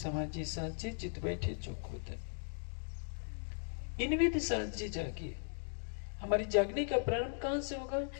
साची चित बैठे चौक होता। इनविद साची जागिए। हमारी जागने का प्रारंभ कहां से होगा?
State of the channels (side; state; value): right; silent; digital silence